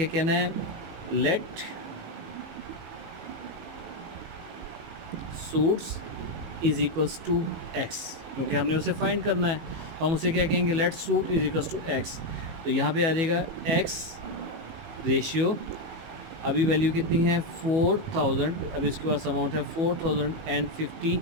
कहना है? Let suits is equals to x, क्योंकि हमने उसे फाइंड करना है. तो हम उसे क्या कहेंगे? Let suit is equals to x. तो यहाँ पे आ जाएगा एक्स रेशियो, अभी वैल्यू कितनी है? 4,000. अभी इसके पास अमाउंट है 4,050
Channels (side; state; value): left; late; 19 ms